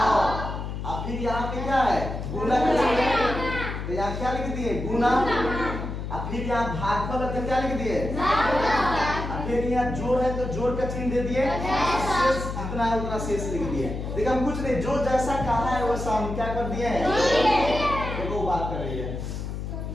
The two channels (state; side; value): noise; left; hum, 5 dB below the sound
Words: अब फिर यहाँ पे क्या है? गुना का चिन्ह है, तो यहाँ क्या लिख दिए? गुना। अब फिर यहाँ भागफल है तो क्या लिख दिए? अब फिर यहाँ जोड़ है तो जोड़ का चिन्ह दे दिए। शेष जितना है उतना शेष लिख दिए। देखिए हम कुछ नहीं, जो जैसा कहा है वैसा हम क्या कर दिए हैं? देखो बात कर रही है,